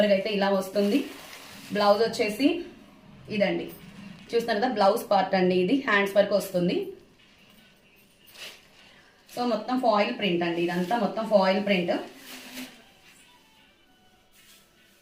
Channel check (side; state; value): both; identical; correlation 1.00